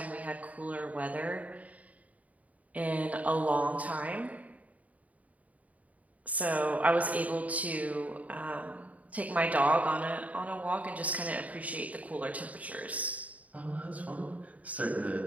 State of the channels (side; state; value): left; late; 0.071 ms